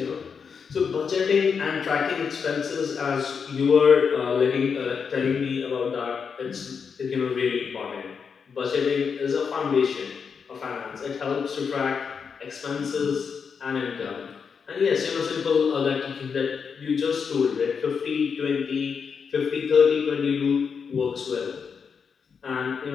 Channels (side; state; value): right; quieter; 6.1 dB